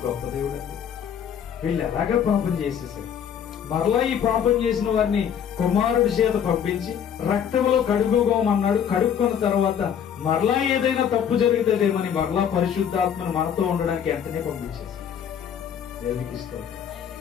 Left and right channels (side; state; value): right; quieter; 8.4 dB